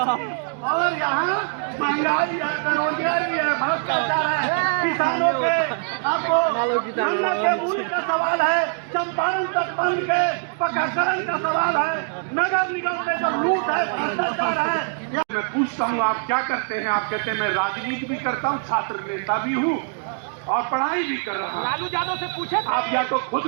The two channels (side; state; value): left; silent; 63 dB below the other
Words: और यहाँ महंगाई है, बेरोजगारी है, भ्रष्टाचार है, किसानों के आपको गन्ना के मूल्य का सवाल है, चंपारण तटबंध के पक्काकरण का सवाल है, नगर निगम में जो लूट है, भ्रष्टाचार है। मैं पूछता हूँ आप क्या करते हैं? आप कहते हैं मैं राजनीति भी करता हूँ, छात्र नेता भी हूँ और पढ़ाई भी कर रहा हूँ। लालू यादव से पूछे आप या तो खुद